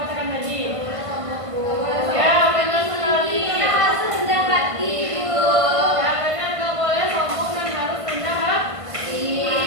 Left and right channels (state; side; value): late; left; 1.5 ms